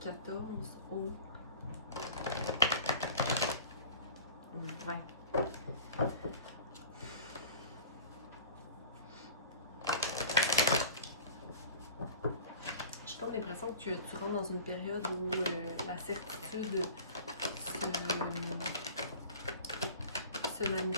14 au 20. J'ai comme l'impression que tu rentres dans une période où la certitude se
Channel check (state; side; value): inverted; both; correlation -0.42